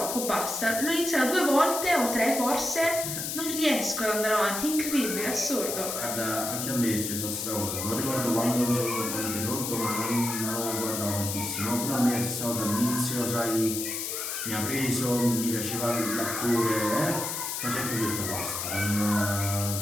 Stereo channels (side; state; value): left; noise; hiss, 3 dB below the sound